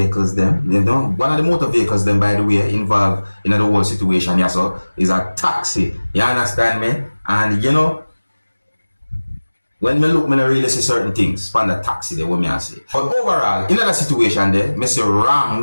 them, you know, one of the motor vehicles them, by the way, involved in the whole situation, yeah, so is a taxi. You understand me? And you know, when we look, me not really see certain things from the taxi there, what me I say. But overall, in that situation there, me see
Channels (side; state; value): both; inverted; correlation -1.00